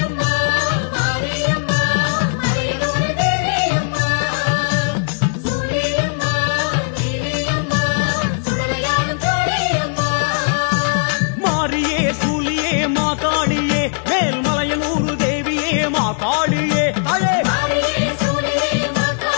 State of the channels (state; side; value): silent; right; 62 dB below the other